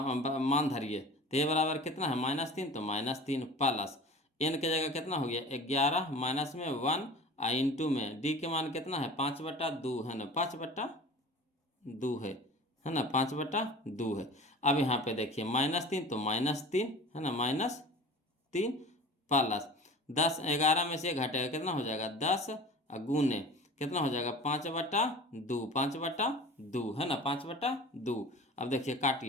मान धरिए, तो ए बराबर कितना है -3, तो -3 प्लस एन के जगह कितना हो गया 11, माइनस में 1 और इंटू में डी के मान कितना है 5/2 है ना, 5/2 है ना, 5/2 है। अब यहाँ पे देखिए -3 तो -3 है ना, -3 प्लस 10, 11 में से घटेगा कितना हो जाएगा 10, और गुने कितना हो जाएगा 5/2, 5/2 है ना, 5/2। अब देखिए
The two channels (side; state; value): both; normal; correlation 0.39